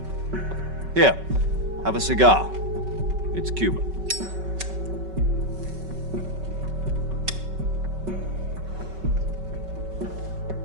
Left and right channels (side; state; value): left; late; 5.3 ms